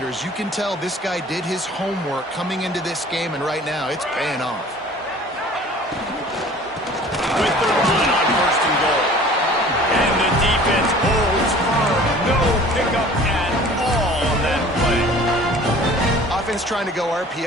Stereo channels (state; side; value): normal; both; correlation 0.47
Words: You can tell this guy did his homework coming into this game, and right now it's paying off. With the run on first and goal. And the defense holds firm. No pickup at all on that play. Offense trying to go